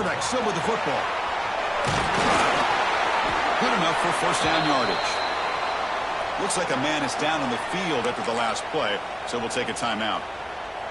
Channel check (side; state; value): both; identical; correlation 1.00